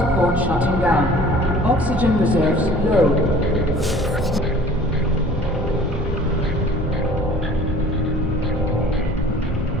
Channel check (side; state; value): both; normal; correlation 0.48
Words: shutting down. Oxygen reserves low.